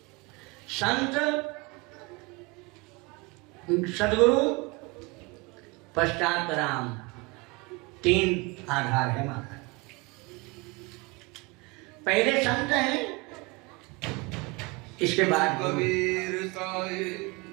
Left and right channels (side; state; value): left; quieter; 26.4 dB